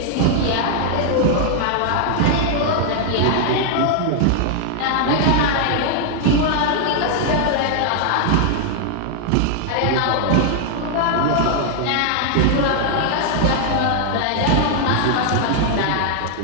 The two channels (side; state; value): both; different; correlation 0.00